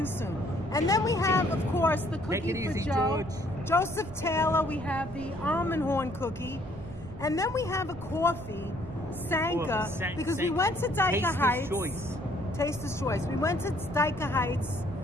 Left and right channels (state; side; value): noise; right; rumble, 14 dB below the sound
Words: soon. And then we have, of course, the cookie for Joe. George. Joseph Taylor. We have the almond horn cookie. And then we have a coffee, Sanka, because we went to Dyker Heights. Taster's Choice. We went to Dyker Heights.